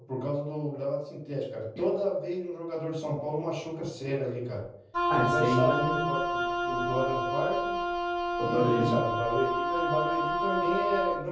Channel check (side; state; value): both; identical; correlation 1.00